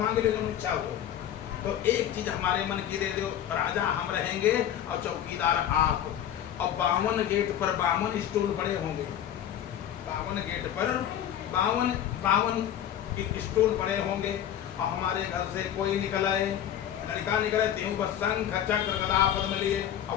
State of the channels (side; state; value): right; quieter; 10.6 dB